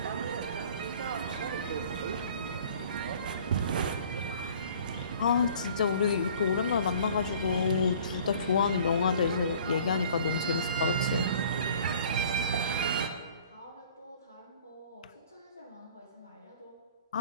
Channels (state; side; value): inverted; both; correlation -0.51